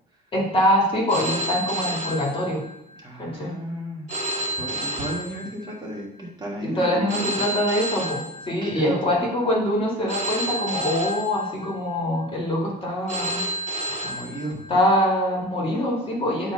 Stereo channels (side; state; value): both; normal; correlation 0.31